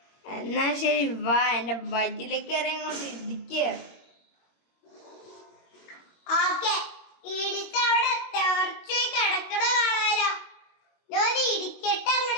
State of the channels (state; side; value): late; right; 22 ms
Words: എന്നാ ശരി, വാ എന്റെ വയറ്റിലേക്ക് ഇറങ്ങി ഇടിക്കുക. ഓക്കെ, ഇടിച്ച് അവിടെ തെറിച്ച് കിടക്കണ കാണാലോ. ഞാൻ ഇടിക്കട്ടെ